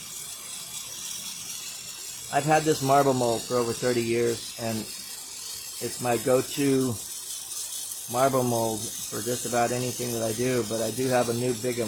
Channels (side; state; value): both; identical; correlation 1.00